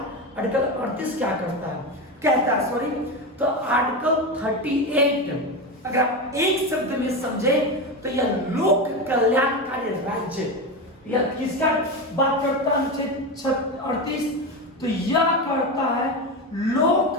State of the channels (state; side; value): normal; both; correlation 0.18